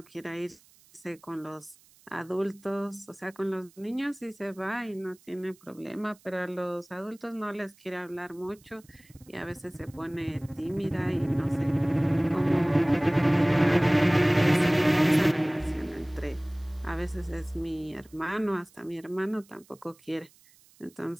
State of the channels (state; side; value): noise; right; hiss, 28 dB below the sound